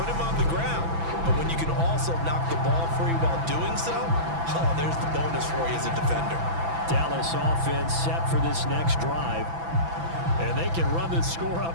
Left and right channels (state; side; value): late; left; 6.0 ms